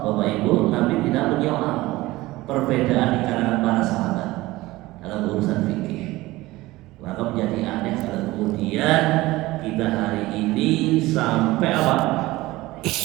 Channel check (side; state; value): left; quieter; 18.9 dB